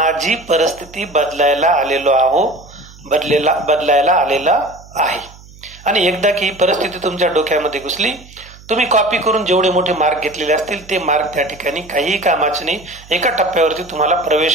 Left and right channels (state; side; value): noise; right; hum, 22 dB below the sound